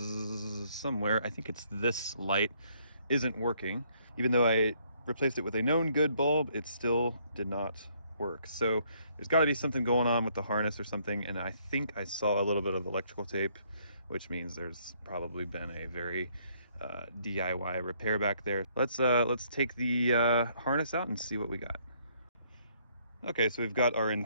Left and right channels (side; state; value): both; inverted; correlation -0.68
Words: somewhere, I think it's this light, isn't working. Even though I replaced it with a known good bulb, it still did not work. So there's got to be something going on with the harness or something, and I think I saw a little bit of electrical tape, which means there's probably been a very DIY repair back there. Let's take the harness out and see what we got. Okay, so we've got our